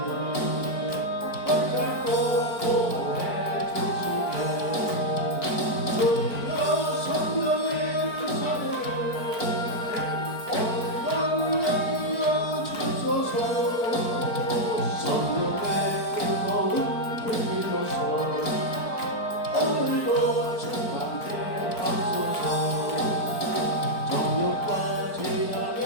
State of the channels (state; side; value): late; right; 4.5 ms